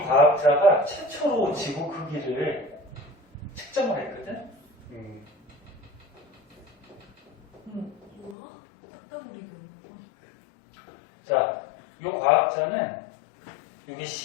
최초로 지구 크기를 측정을 했거든. 뭐야? 딱따구리가. 자, 이 과학자는 여기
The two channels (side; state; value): right; drops out; at 8.3 s